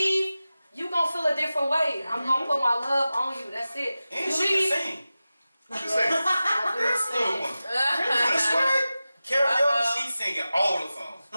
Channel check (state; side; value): inverted; both; correlation -0.95